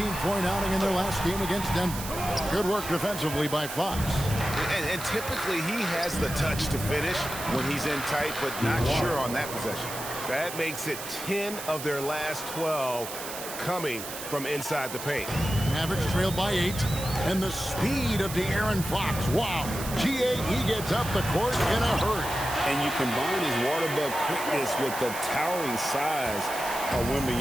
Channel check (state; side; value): noise; right; hiss, 9 dB below the sound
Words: outing in their last game against Denver. Good work defensively by Fox. And typically he has the touch to finish when he's in tight, but not sure on that possession. That makes it 10 of their last 12 coming from inside the paint. Mavericks trailed by 8. And the speed of De'Aaron Fox. Wow. He gets up the court in a hurry. And you combine his water bug quickness with the towering size of